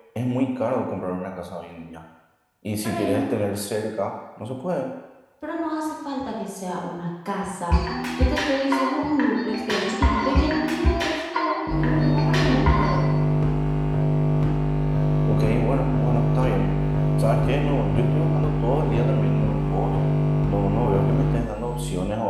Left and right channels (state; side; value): identical; both; correlation 1.00